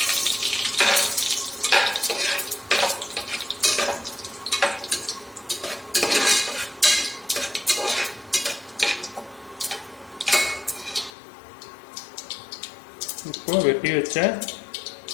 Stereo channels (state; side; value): drops out; right; at 11.1 s